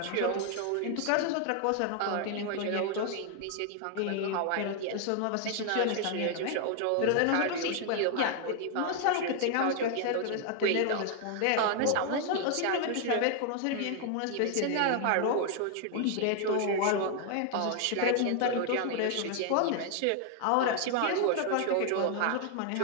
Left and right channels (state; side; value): different; both; correlation 0.00